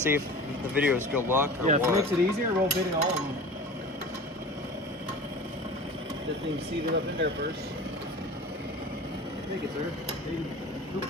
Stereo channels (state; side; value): normal; both; correlation 0.38